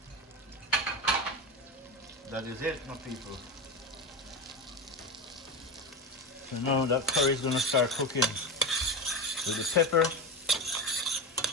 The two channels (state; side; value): normal; both; correlation 0.20